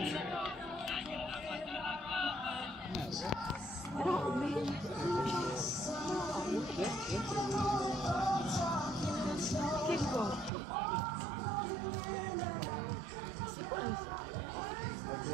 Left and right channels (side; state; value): left; drops out; at 10.5 s